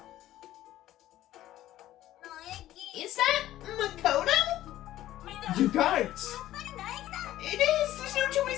Is that Makoto? You guys! It is! There's no two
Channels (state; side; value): quieter; right; 14.0 dB